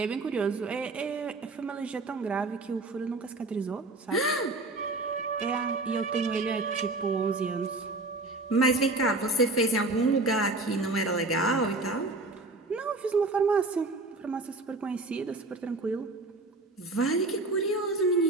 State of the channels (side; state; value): left; quieter; 3.1 dB